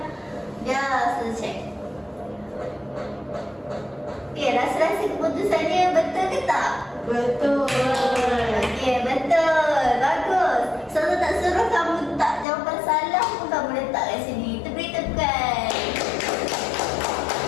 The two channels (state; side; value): drops out; right; at 12.5 s